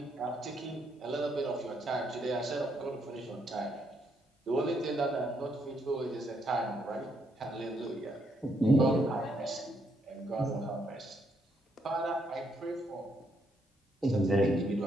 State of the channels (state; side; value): normal; both; correlation 0.75